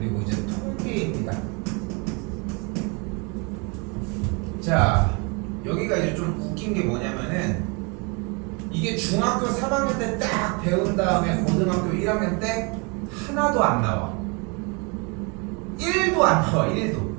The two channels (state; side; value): quieter; left; 31.6 dB